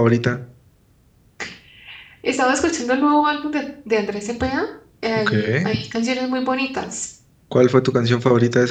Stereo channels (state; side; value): identical; both; correlation 1.00